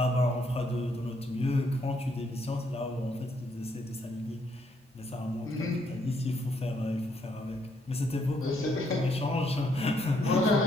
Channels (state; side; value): normal; both; correlation 0.72